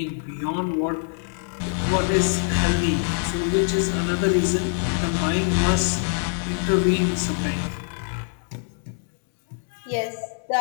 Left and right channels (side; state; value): right; silent; digital silence